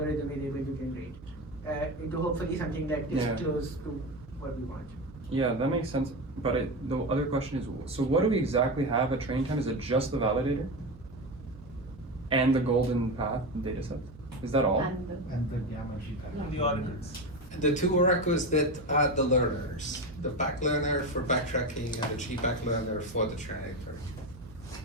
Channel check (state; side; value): noise; right; hum, 19 dB below the sound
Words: is able to generate into hopefully something that is Yeah. close to what we want. Yeah, that makes sense. But the other question is, so what do we exactly have at training time? Is it just the validator and the golden path data set? Is that all? And the gamma G pattern. The ordinals. The two oracles that are the learners, the back learner for backtracking and the G-back learner for the generator.